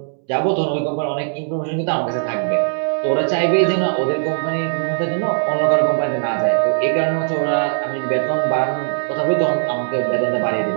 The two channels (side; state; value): left; silent; 66 dB below the other